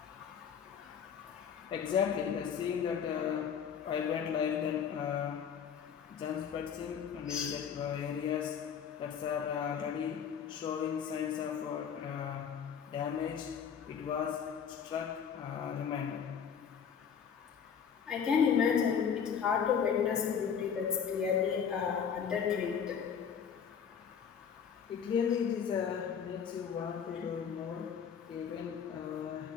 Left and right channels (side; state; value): right; quieter; 7.4 dB